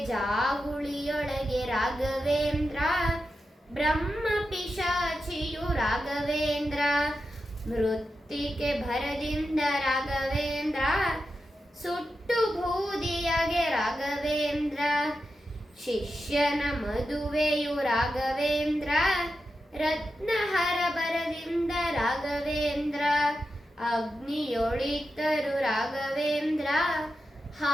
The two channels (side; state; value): both; normal; correlation 0.89